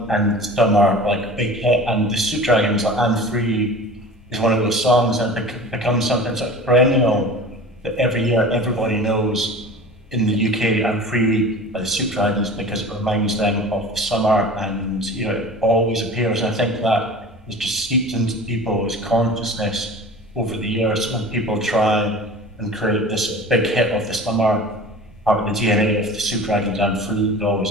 and summer like big hit, and the Soup Dragons like I'm Free is one of those songs, and it becomes something sort of perennial that every year everybody knows in the UK I'm Free by the Soup Dragons, because it reminds them of the summer, and it always appears. And I think that is just seeped into people's consciousness over the years when people try and create this big hit of the summer. Part of the DNA of the Soup Dragons I'm Free is always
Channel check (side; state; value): both; normal; correlation 0.38